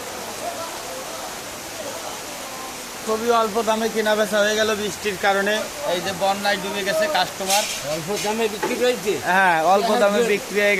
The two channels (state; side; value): identical; both; correlation 1.00